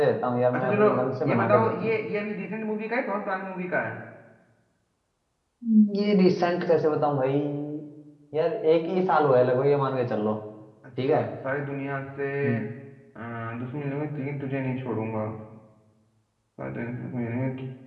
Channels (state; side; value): identical; both; correlation 1.00